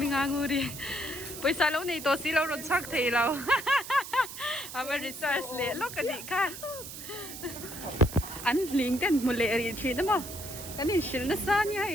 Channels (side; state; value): right; noise; hiss, 11 dB below the sound